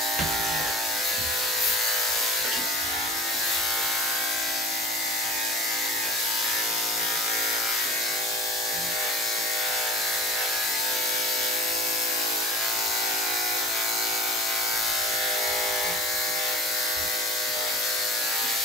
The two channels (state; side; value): normal; both; correlation 0.42